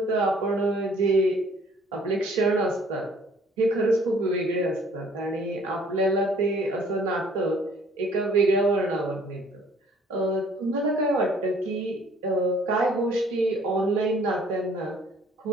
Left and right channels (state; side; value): normal; both; correlation 0.57